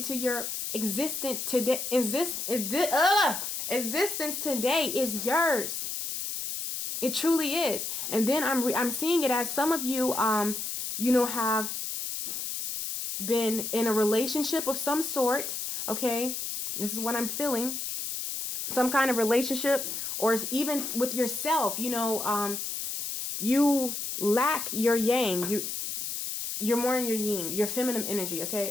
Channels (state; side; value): noise; left; hiss, 4 dB below the sound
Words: your existence today is yours. It truly is. And then I'm seeing it as some of you have been in a relationship of some sort, okay? This is what I'm feeling. Some kind of relationship, or even with yourself, you lack your yang. You're more in your yin, your feminine energy,